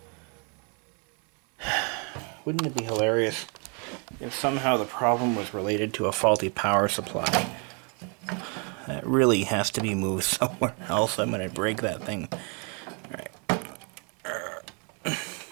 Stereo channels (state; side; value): quieter; left; 36.0 dB